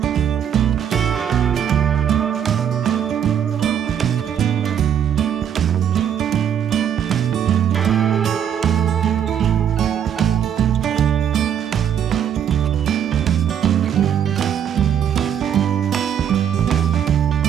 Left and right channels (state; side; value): quieter; left; 9.0 dB